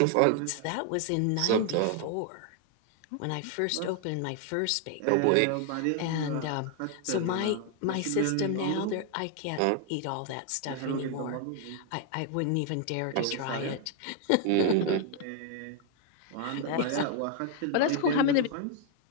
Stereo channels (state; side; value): different; both; correlation 0.00